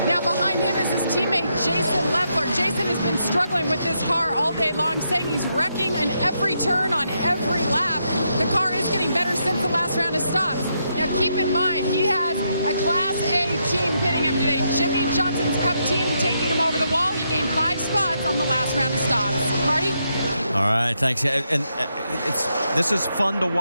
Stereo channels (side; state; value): both; inverted; correlation -0.80